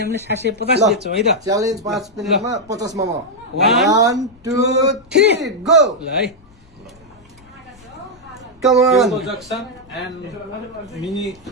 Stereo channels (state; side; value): noise; left; rumble, 27 dB below the sound